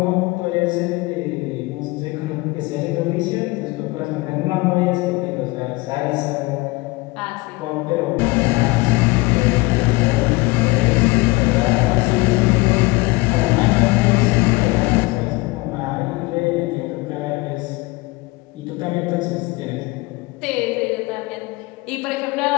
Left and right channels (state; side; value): quieter; right; 22.8 dB